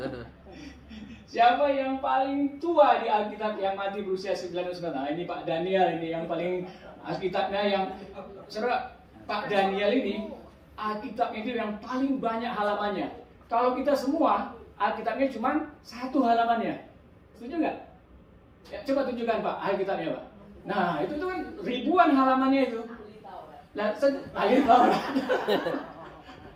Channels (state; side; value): identical; both; correlation 1.00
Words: Siapa yang paling tua di Alkitab yang mati berusia 99 tahun? Nah, ini Pak Daniel ini yang paling Alkitabnya yang saudara. Pak Daniel ini Alkitabnya itu yang paling banyak halamannya. Kalau kita semua Alkitabnya cuma 1 halamannya. Setuju nggak? Ya, coba tunjukkan Pak Alkitabnya Pak. Nah itu tuh kan ribuan halamannya itu. Nah, ahli Taurat.